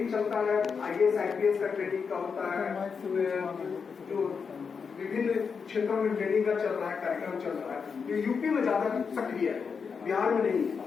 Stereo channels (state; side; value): quieter; right; 5.8 dB